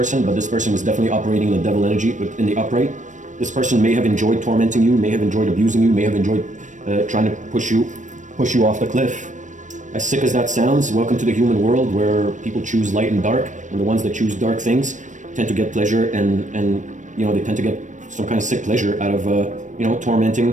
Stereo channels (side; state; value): left; late; 0.36 ms